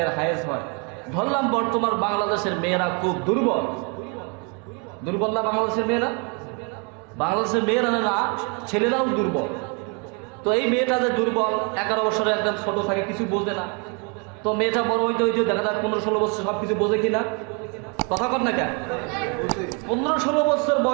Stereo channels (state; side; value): quieter; left; 34.6 dB